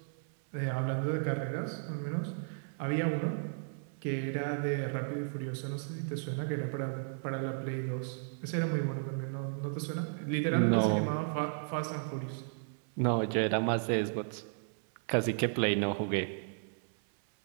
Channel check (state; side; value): silent; left; 55 dB below the other